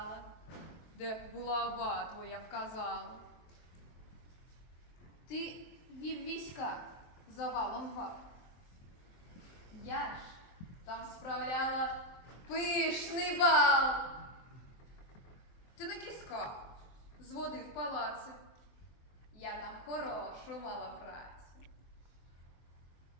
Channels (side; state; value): right; late; 23 ms